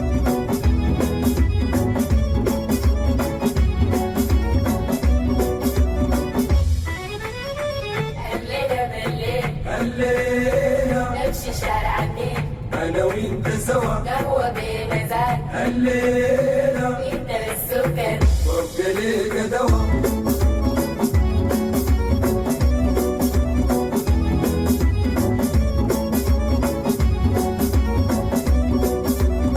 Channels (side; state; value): both; identical; correlation 1.00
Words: الليلة نمشي شارع النيل انا وانت سوا قهوة بمزاج الليلة انت السكر وابقى ليك دوا